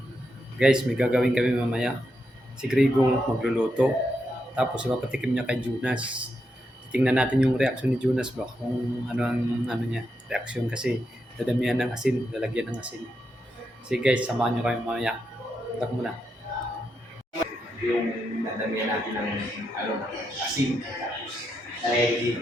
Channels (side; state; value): both; normal; correlation 0.83